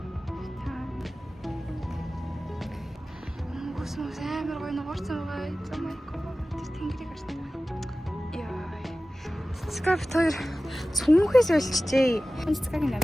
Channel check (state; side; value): normal; both; correlation 0.96